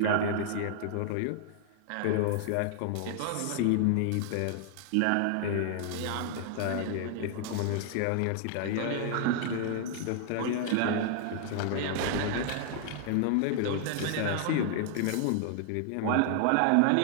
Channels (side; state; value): both; different; correlation -0.01